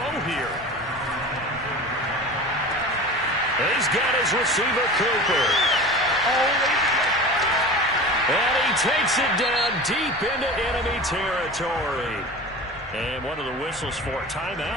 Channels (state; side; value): normal; both; correlation 0.34